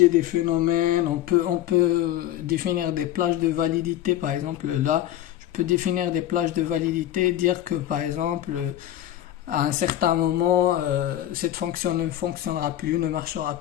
des phénomènes, on peut définir des plages de validité. Par exemple, là, je peux définir des plages de validité, dire que, par exemple, à un certain moment, cette fonction ne fonctionnera plus, ne marchera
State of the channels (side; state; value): right; quieter; 12.7 dB